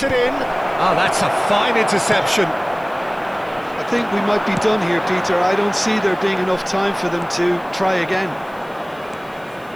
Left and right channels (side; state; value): left; noise; hiss, 29 dB below the sound